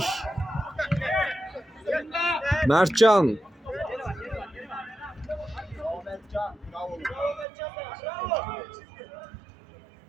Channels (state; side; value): drops out; left; at 7.5 s